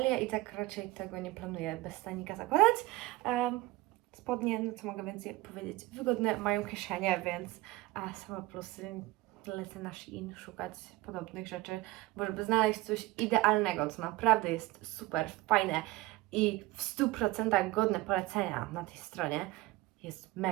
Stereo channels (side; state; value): left; quieter; 18.4 dB